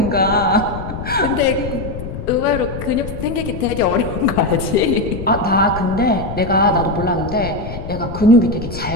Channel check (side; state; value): left; noise; rumble, 8 dB below the sound